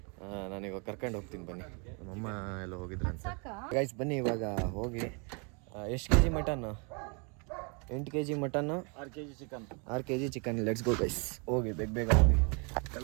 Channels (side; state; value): left; quieter; 34.4 dB